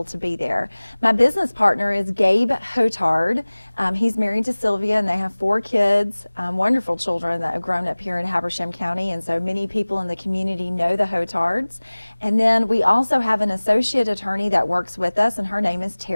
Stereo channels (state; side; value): inverted; both; correlation -1.00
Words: to be there. My business partner is Gabe Hotard. He's married to Sylvia, and they have 4 kids, wonderful children that have grown up here in Habersham County, and so many people in the community know the Hotards. And then we also have an associate attorney that works with us, and her name is